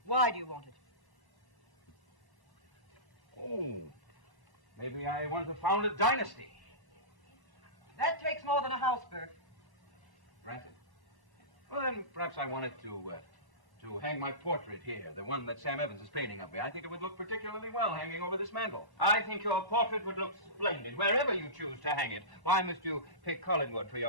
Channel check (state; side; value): late; left; 1.1 ms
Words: Why do you want it? Oh, maybe I want to found a dynasty. That takes more than a house, Bert. Granted. Well, then perhaps I wanted to hang my portrait here, the one that Sam Evans is painting of me. I think it would look particularly well hanging over this mantel. I think your portrait would look splendid wherever you choose to hang it. Why must you pick Collinwood for